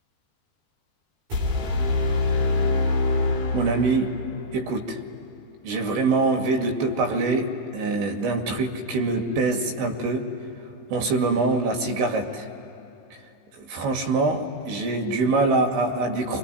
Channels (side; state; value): left; late; 17 ms